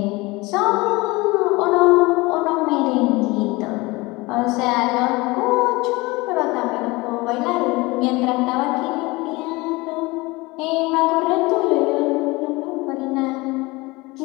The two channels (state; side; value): quieter; right; 22.9 dB